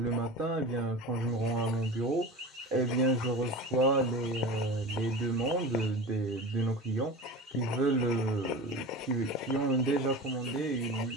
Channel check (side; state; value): both; normal; correlation 0.31